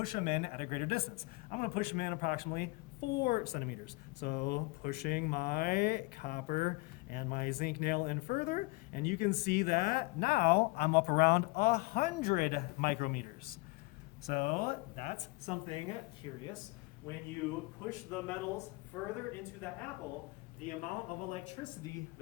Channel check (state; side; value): quieter; right; 25.2 dB